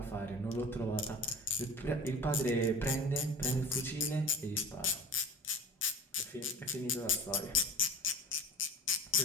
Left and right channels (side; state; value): both; normal; correlation 0.36